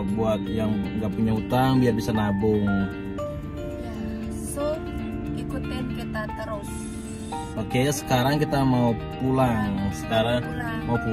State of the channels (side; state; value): both; identical; correlation 1.00